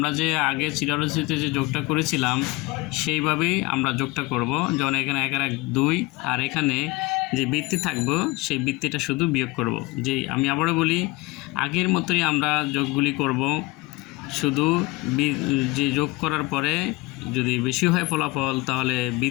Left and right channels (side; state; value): right; quieter; 22.2 dB